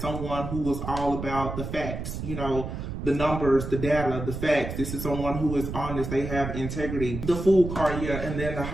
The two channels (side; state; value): right; noise; rumble, 6 dB below the sound